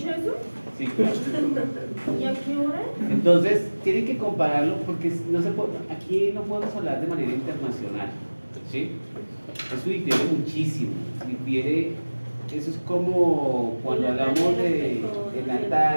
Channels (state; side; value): inverted; both; correlation -1.00